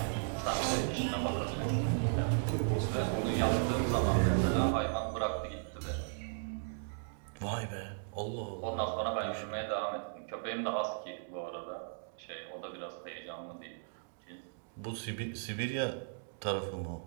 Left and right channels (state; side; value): silent; left; digital silence